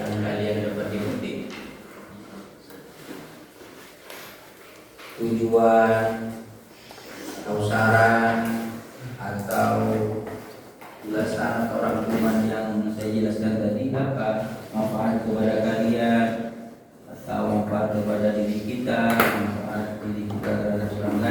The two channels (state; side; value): identical; both; correlation 1.00